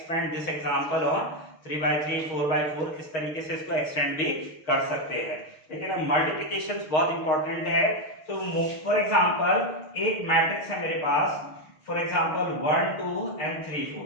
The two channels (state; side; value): late; right; 6.4 ms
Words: this example on 3/3, 4/4, इस तरीके से इसको एक्सटेंड भी कर सकते हैं। लेकिन अब मल्टीप्लिकेशन बहुत इंपॉर्टेंट है। तो फॉर एग्जांपल एक मैट्रिक्स है मेरे पास, फॉर एग्जांपल 1 2 एंड 3